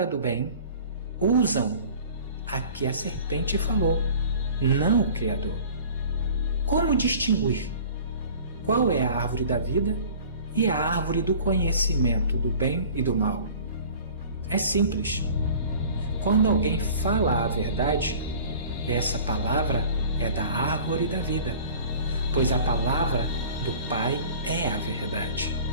do bem, usam a que a serpente falou, não o Criador. Como distinguir qual é a árvore da vida e a árvore do conhecimento do bem e do mal? É simples. Quando alguém fala a verdade, essa palavra é da árvore da vida, pois a palavra do Pai é a verdade.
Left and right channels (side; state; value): both; inverted; correlation -0.45